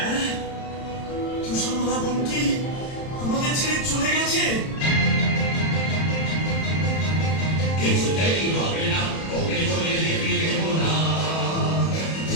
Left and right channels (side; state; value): right; late; 31 ms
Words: তুষারমালা বোন কি আমাদের ছেড়ে চলে গেছে? কিছুতেই হবে না, ওকে চলে যেতে দেব না।